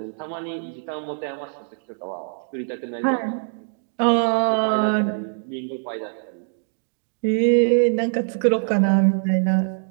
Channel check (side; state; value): left; silent; digital silence